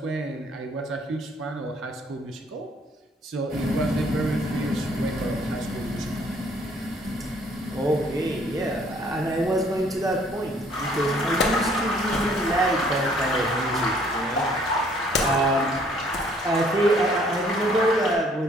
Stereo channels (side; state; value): both; normal; correlation 0.61